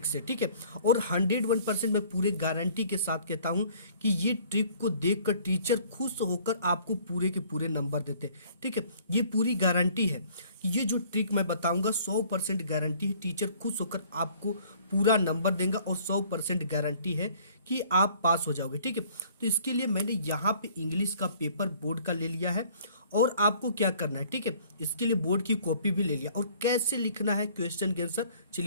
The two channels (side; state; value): both; inverted; correlation -0.55